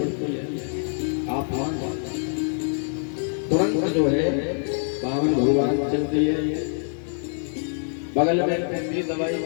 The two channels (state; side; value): silent; right; 62 dB below the other